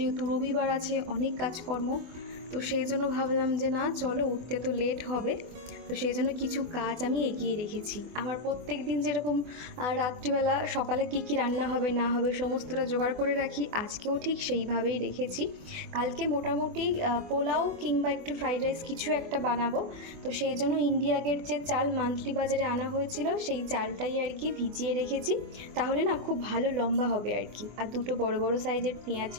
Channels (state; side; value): late; left; 24 ms